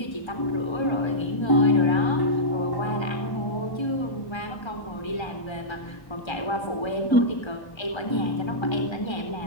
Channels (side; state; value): right; late; 1.3 ms